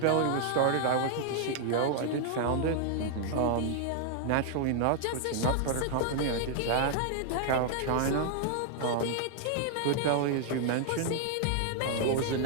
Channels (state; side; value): different; both; correlation 0.00